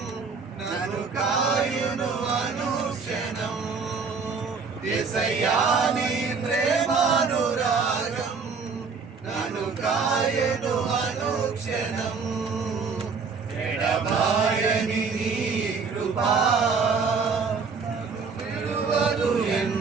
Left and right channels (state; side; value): quieter; left; 5.1 dB